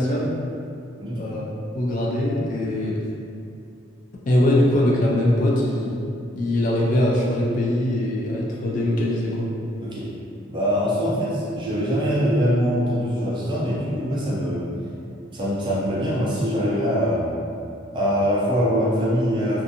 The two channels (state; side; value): normal; both; correlation 0.64